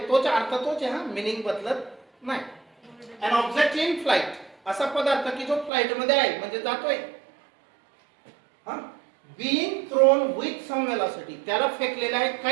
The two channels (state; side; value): drops out; left; at 5.7 s